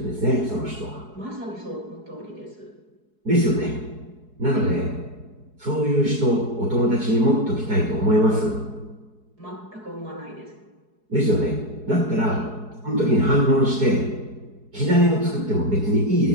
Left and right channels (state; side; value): late; left; 4.7 ms